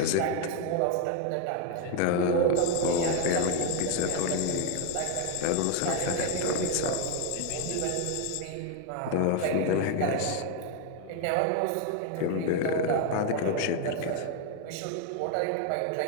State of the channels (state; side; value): different; both; correlation 0.01